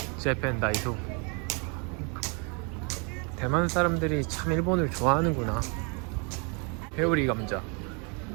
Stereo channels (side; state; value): left; quieter; 34.1 dB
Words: 재팬 다이소. 대만 사람들이 참 일본을 좋아하는구나. 회오리 감자.